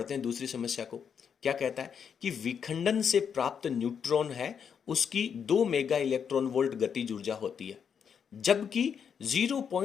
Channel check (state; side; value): quieter; right; 7.3 dB